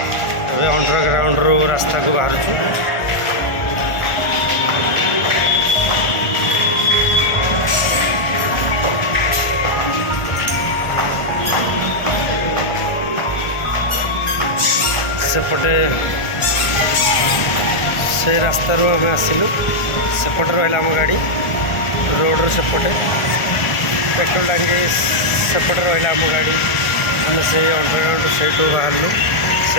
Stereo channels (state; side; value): late; right; 1.4 ms